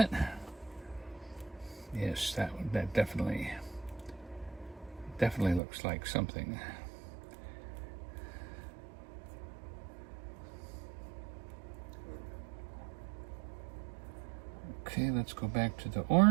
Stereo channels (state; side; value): drops out; left; at 5.6 s